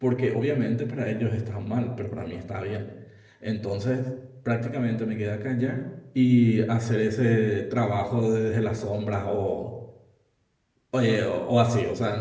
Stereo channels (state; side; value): identical; both; correlation 1.00